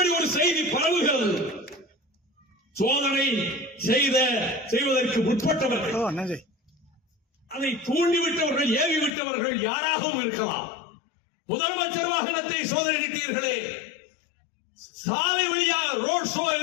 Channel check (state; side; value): drops out; right; at 9.1 s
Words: ஒரு செய்தி பரவுகிறது. சோதனை செய்வதற்கு முற்பட்டவர்கள், அதை தூண்டிவிட்டவர்கள், ஏவிவிட்டவர்கள் யாராகவும் இருக்கலாம். முதலமைச்சர் வாகனத்தை சோதனையிட்டீர்களே, சாலை வழியாக ரோட் ஷோ